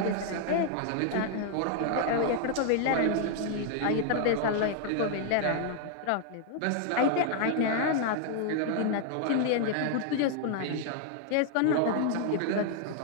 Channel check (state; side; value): different; both; correlation 0.00